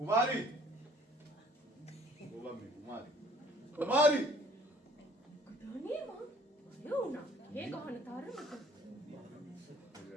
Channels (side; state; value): both; normal; correlation 0.56